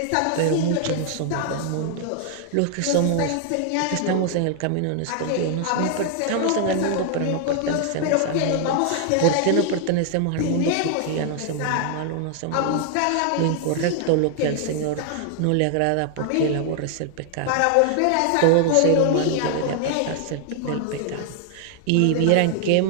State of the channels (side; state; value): both; different; correlation 0.00